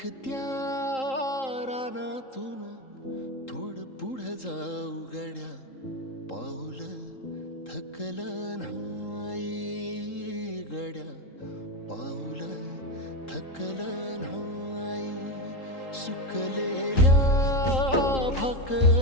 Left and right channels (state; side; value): late; right; 3.8 ms